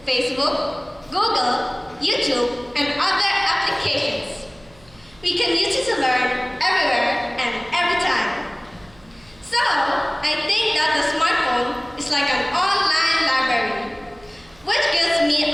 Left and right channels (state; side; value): noise; right; hum, 27 dB below the sound